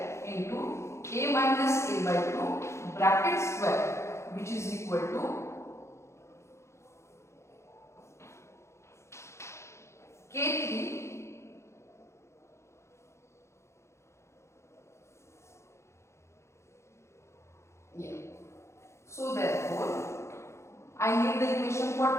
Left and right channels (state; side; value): late; right; 0.13 ms